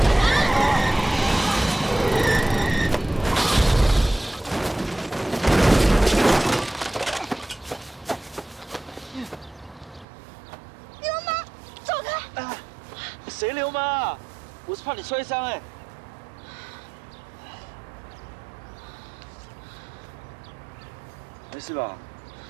流氓，走開！啊，誰流氓啊？我是怕你摔傷哎。 沒事吧？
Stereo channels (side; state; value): left; drops out; at 10.1 s